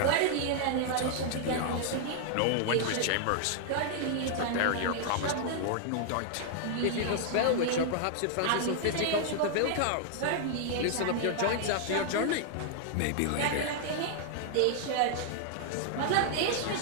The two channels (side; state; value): both; different; correlation -0.01